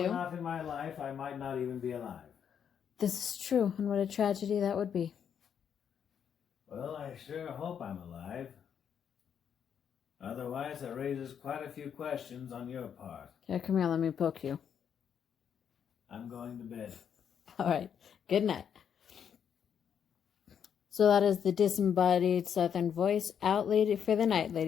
were not in my life, I might not even be alive. This is true, and what a tragedy that would be. Well, I sure hope I'm alive. Otherwise, it raises quite a few questions on your part. Here, come here, let me poke you. I'm going to bed. All right, good night. So that is the Disembodied Southern Voice out lady for the night,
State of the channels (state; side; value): quieter; right; 8.1 dB